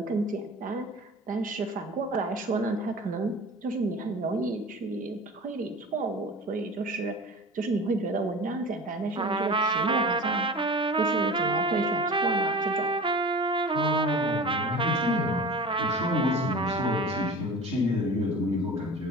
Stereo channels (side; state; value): both; normal; correlation 0.37